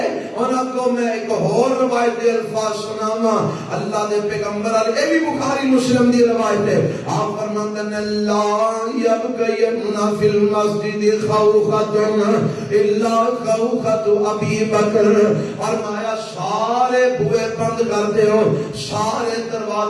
انہاں کو میں ایک اور روایت دے الفاظ سناواں. اللہ دے پیغمبر علیہ, اے بھی بخاری مسلم دی روایت ہے. آپ فرماندے نے لا یبقین فی المسجد خوخۃ الا خوخۃ ابی بکر. فرمایا سارے بوئے بند کرتے ہو, سارے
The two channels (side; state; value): both; identical; correlation 1.00